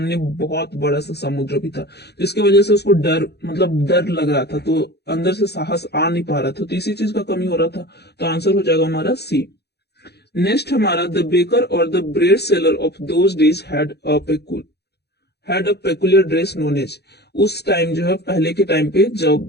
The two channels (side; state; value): right; late; 0.48 ms